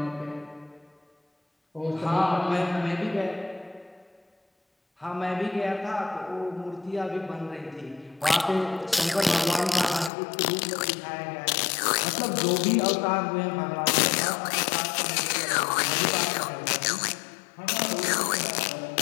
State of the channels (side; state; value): right; drops out; at 10.1 s